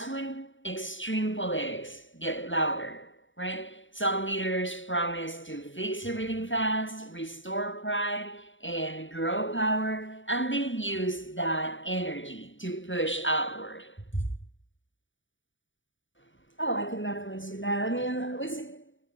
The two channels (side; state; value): right; late; 0.56 ms